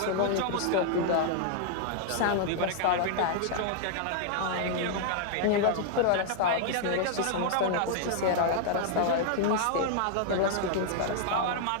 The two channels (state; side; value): different; both; correlation -0.01